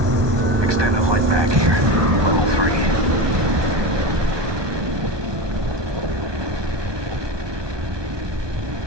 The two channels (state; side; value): late; left; 1.2 ms